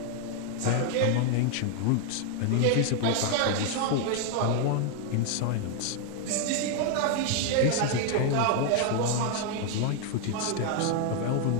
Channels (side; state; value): both; different; correlation 0.00